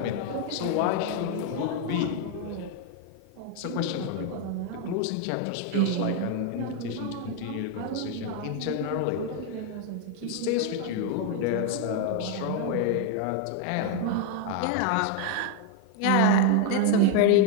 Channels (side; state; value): both; different; correlation 0.01